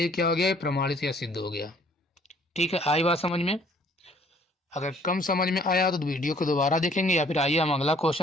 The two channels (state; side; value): normal; both; correlation 0.59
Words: क्या हो गया, प्रमाणित या सिद्ध हो गया। ठीक है, आई बात समझ में। अगर कम समझ में आया तो वीडियो को दोबारा देखेंगे, या फिर आइए हम अगला